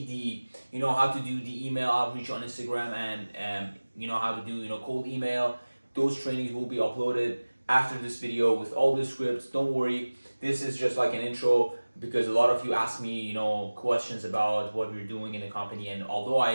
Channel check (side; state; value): both; inverted; correlation -1.00